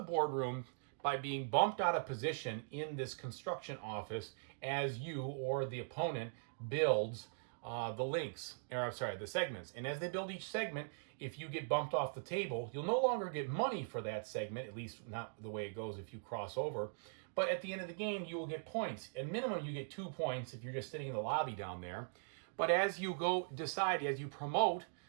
by being bumped out of position in this construction office as you or the opponent builds the segments. And as they build each segment, if you get bumped off the table, you'll no longer get money for that segment, at least not the way it goes if you cross over. But at the end of the game, you will get points. At minimum, you get 2 points if you're just sitting in the lobby down there. But as you as you promote,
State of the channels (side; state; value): left; silent; digital silence